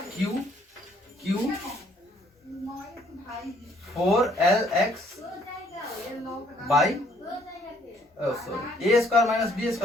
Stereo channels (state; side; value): normal; both; correlation 0.65